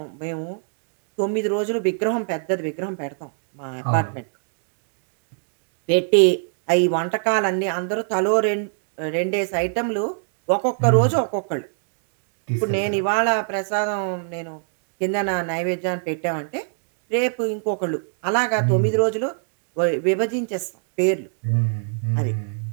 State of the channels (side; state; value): left; silent; digital silence